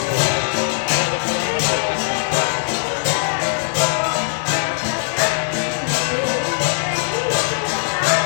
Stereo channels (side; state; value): right; silent; digital silence